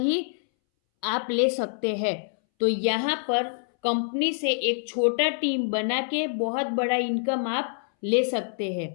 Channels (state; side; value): silent; right; 61 dB below the other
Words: आप ले सकते हैं। तो यहाँ पर कंपनी से एक छोटा टीम बना के बहुत बड़ा इनकम आप ले सकते